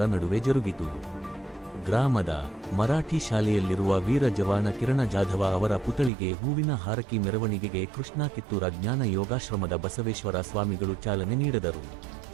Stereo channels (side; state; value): left; drops out; at 6.1 s